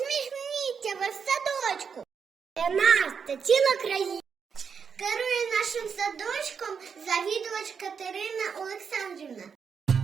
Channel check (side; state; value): left; quieter; 6.4 dB